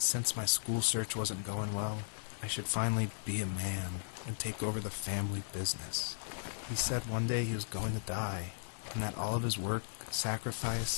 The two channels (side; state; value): right; silent; 53 dB below the other